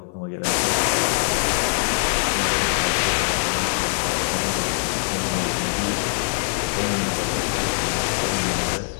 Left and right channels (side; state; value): right; silent; 57 dB below the other